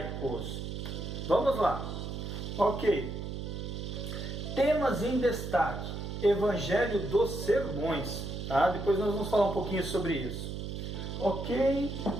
Vamos lá. Ok. Temas em destaque. Evangelho dos sermões. Tá? Depois nós vamos falar um pouquinho sobre isso. Ok.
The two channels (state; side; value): noise; right; hum, 6 dB below the sound